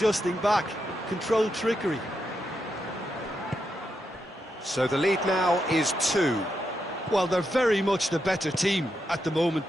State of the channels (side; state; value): both; normal; correlation 0.84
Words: back. Controlled trickery. So the lead now is 2. Well, they're very much the better team at the moment,